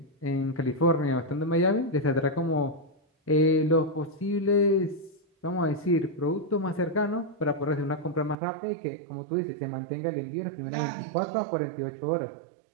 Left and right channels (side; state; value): left; drops out; at 8.3 s